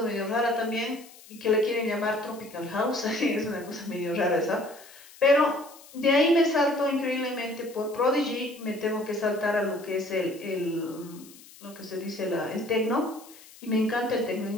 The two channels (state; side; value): noise; left; hiss, 21 dB below the sound